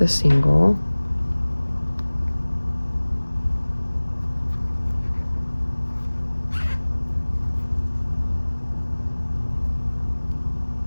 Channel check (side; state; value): both; inverted; correlation -1.00